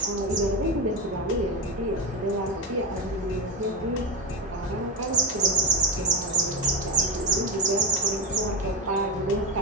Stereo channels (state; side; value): normal; both; correlation 0.13